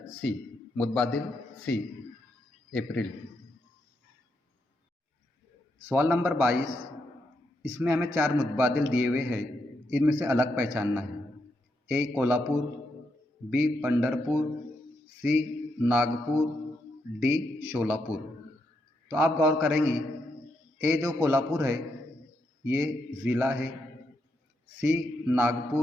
सी, मुतबादिल सी, अप्रैल। सवाल नंबर 22, इसमें हमें 4 मुतबादिल दिए हुए हैं, इनमें से अलग पहचानना है। ए कोल्हापुर, बी पंढरपुर, सी नागपुर, डी शोलापुर। तो आप गौर करेंगे ए जो कोल्हापुर है ये ज़िला है, सी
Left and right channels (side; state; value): both; normal; correlation 0.81